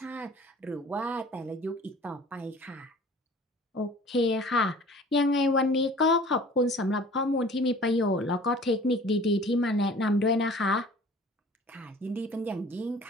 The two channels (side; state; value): both; normal; correlation 0.47